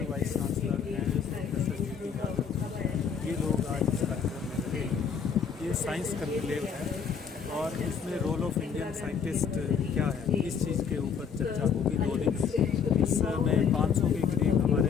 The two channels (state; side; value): quieter; right; 6.9 dB